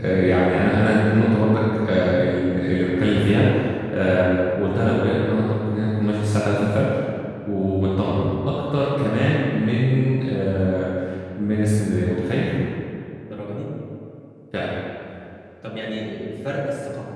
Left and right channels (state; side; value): identical; both; correlation 1.00